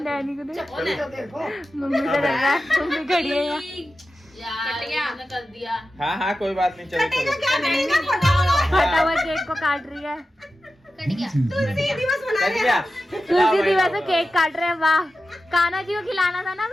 को दे, मम्मी का डर रहा है, मम्मी खड़ी है यार। कर दिया। हाँ कोई बात नहीं, चलो फटा हुआ केक को काट रही है। कट गया। तुलसी दिवस मना चल गया। तुलसी दिवस में केक काट रहे हैं। वाह, कान्हा जी को खिलाना था ना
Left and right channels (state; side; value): normal; both; correlation 0.93